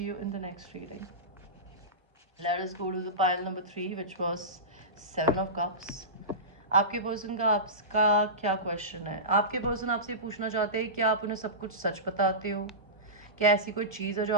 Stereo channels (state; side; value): normal; both; correlation -0.19